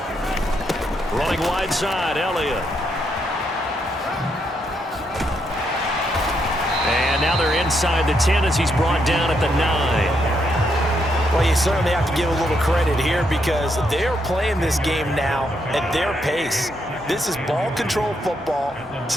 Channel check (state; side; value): normal; both; correlation 0.78